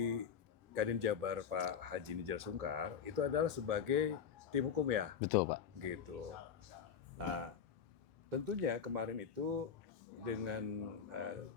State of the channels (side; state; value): right; quieter; 7.3 dB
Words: Kadin Jabar Pak Haji Nijar Sungkar itu adalah sebagai tim hukum, ya? Betul, Pak. Gitu. Nah, tentunya kemarin itu dengan